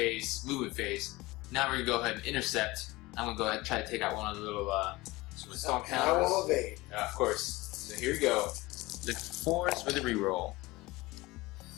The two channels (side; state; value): right; quieter; 20.9 dB